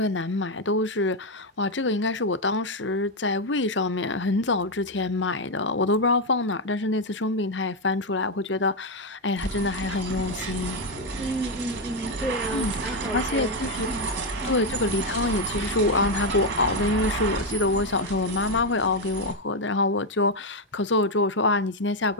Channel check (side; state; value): both; normal; correlation 0.05